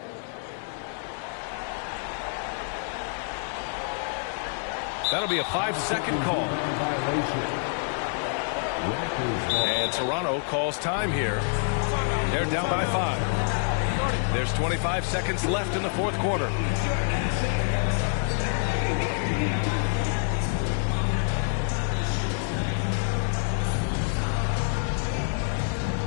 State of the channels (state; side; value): silent; right; 60 dB below the other